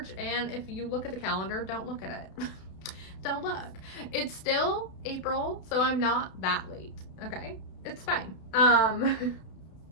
And if you look at the calendar, don't look at it. Don't look. It's still April, so I'm not that late. Okay, it's fine.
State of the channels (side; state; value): right; late; 32 ms